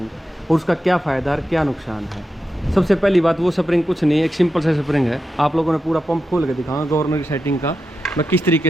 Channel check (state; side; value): normal; both; correlation 0.89